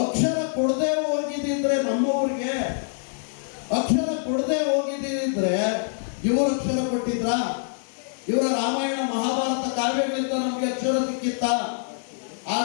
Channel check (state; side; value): silent; right; digital silence